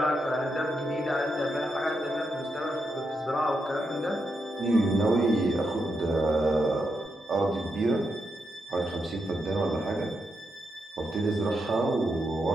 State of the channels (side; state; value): both; normal; correlation 0.83